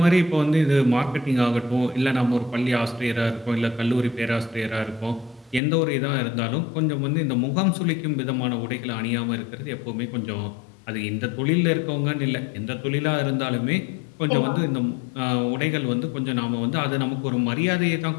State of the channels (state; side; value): drops out; right; at 5.6 s